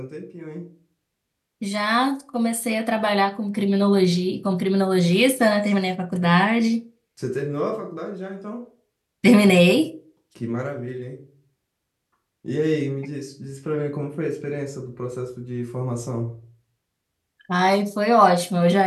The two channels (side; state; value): both; identical; correlation 1.00